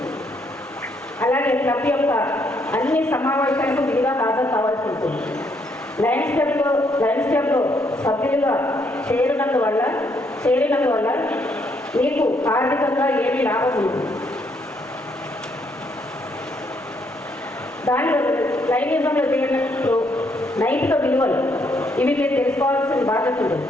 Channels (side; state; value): both; normal; correlation 0.72